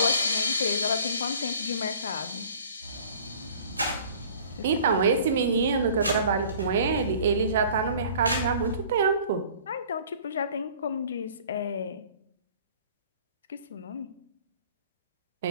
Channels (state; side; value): inverted; both; correlation -0.50